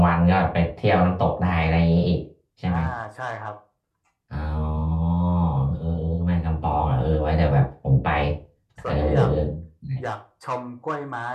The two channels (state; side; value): identical; both; correlation 1.00